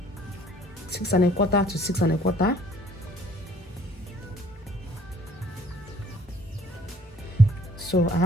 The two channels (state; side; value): normal; both; correlation 0.57